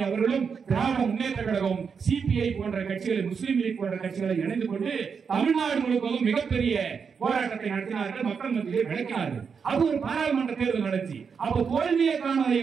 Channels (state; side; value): quieter; left; 6.1 dB